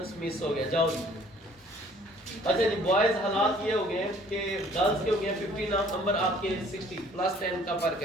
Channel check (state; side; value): normal; both; correlation 0.56